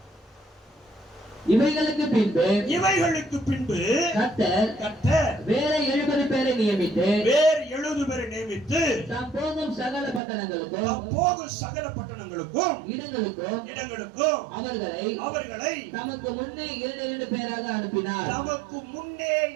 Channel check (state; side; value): drops out; left; at 10.2 s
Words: இவைகளுக்கு பின்பு கர்த்தர் வேற 70 பேரை நியமித்து தாம் போகும் சகல பட்டணங்களுக்கும் இடங்களுக்கும் அவர்களை தமக்கு முன்னே 2 பேராக அனுப்பினார். நமக்கு முன்னே